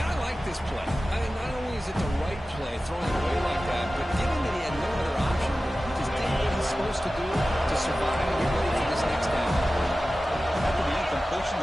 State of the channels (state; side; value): normal; both; correlation 0.95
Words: I like this play. I mean, not only is it the right play, throwing it away like that, but given that he had no other option, he just did what he's supposed to do to survive and get ready for this next down. After the incompletion,